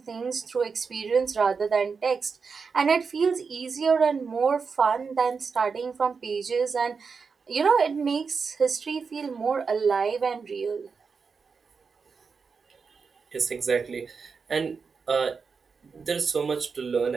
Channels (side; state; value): left; quieter; 5.3 dB